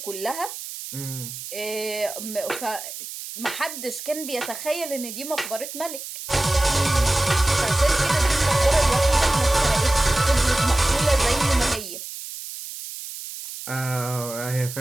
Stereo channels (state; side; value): noise; right; hiss, 10 dB below the sound